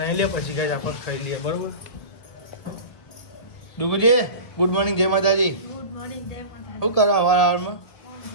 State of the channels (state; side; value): late; right; 1.7 ms